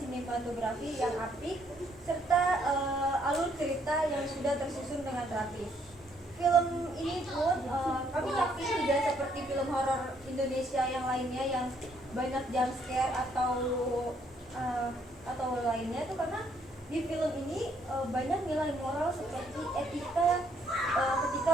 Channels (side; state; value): both; normal; correlation 0.69